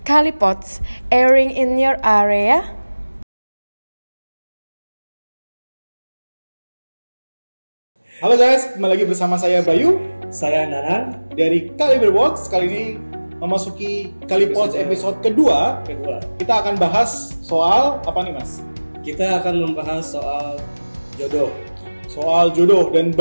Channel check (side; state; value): both; inverted; correlation -1.00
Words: Kalipods, airing in your area. Halo guys, kembali lagi bersama saya Bayu, saya Nanan dari Kaliberbox. Kali ini memasuki Kalipods episode kedua. Kita akan bahas soal apa nih Mas? Kita akan membahas soal jodoh. Soal jodoh dan